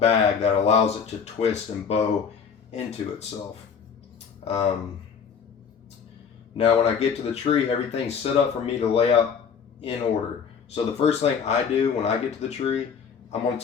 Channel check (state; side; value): quieter; right; 6.6 dB